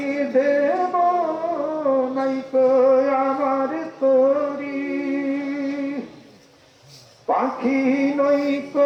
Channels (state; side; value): identical; both; correlation 1.00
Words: দেব নাইকো আমার তরি, পাখি